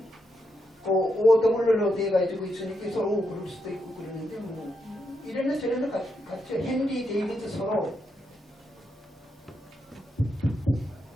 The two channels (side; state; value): both; normal; correlation 0.82